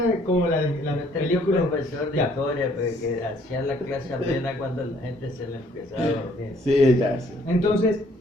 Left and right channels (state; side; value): normal; both; correlation 0.62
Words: es como la Tenía un película. profesor de historia pues, que hacía la clase amena cuando la gente se le empezaba a dormir. Sí, ya, sí. Entonces,